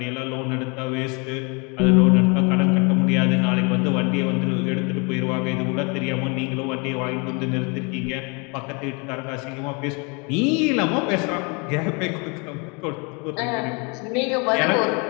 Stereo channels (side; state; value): right; quieter; 31.8 dB